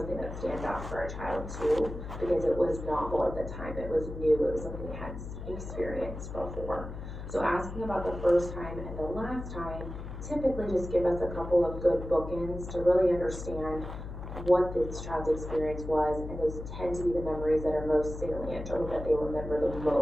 that stands out for a child too, because it was novel at the time, it was new, it was something they hadn't experienced before. So asking about the first time and the last time typically just give us a couple of good bookends to really understand what this child's experience was, and those tend to be the memories that are most salient or that they remember the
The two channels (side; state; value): left; noise; hum, 9 dB below the sound